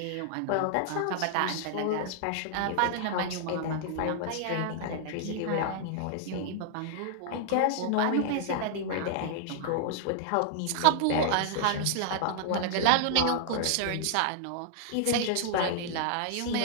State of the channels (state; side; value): different; both; correlation -0.01